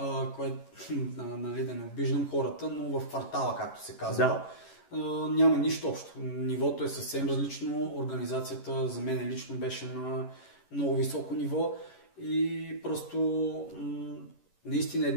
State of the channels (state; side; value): late; right; 11 ms